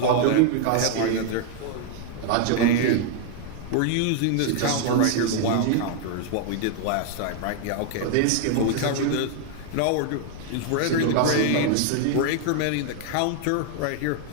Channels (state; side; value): different; both; correlation 0.00